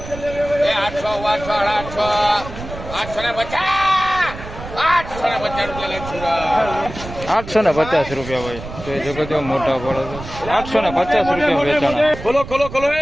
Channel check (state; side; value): noise; right; rumble, 12 dB below the sound